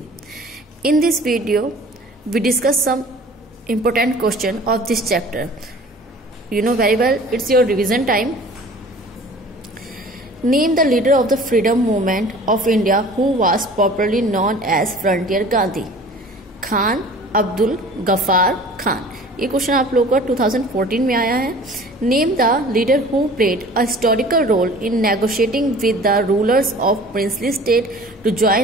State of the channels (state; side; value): normal; both; correlation 0.46